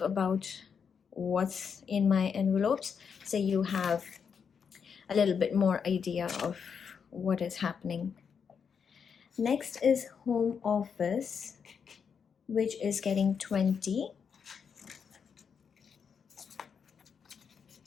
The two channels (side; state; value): right; quieter; 6.6 dB